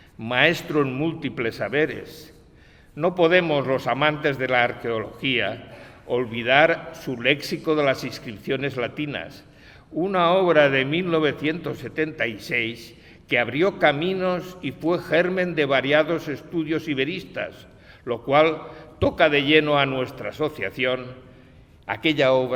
maestro en múltiples saberes? No podemos, los amantes de la arqueología, olvidar su léxico de las inscripciones latinas, una obra de 1976 que abrió caminos y fue germen de variados estudios iberistas, lo cual toca de lleno a nuestra asociación. Aquella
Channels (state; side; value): identical; both; correlation 1.00